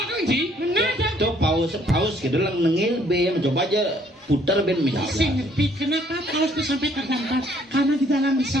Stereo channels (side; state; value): both; normal; correlation 0.64